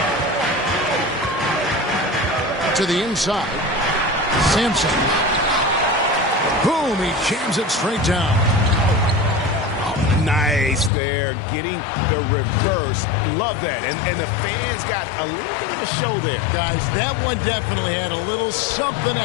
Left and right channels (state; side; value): drops out; right; at 10.9 s